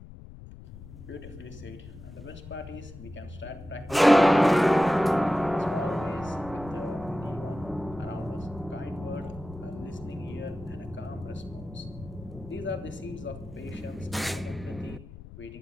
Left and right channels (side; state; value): left; noise; rumble, 15 dB below the sound